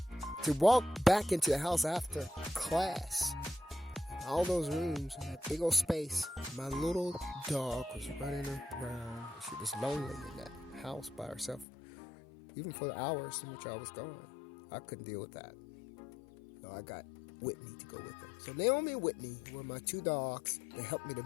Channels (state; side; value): drops out; right; at 11.7 s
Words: walk back into the house after class. All those rooms and that big old space. My little dog was running around. She was lonely in that house by herself, even for the hours in which I was gone. I couldn't deal with that. So I got Whitney to go with her. So Naomi and Whitney were my two dogs that helped me to